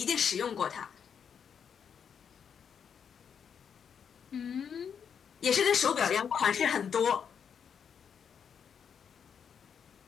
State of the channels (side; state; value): right; quieter; 7.3 dB